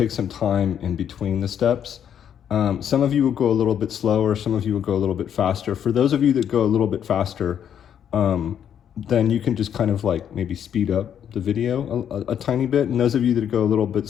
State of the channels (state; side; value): quieter; right; 9.1 dB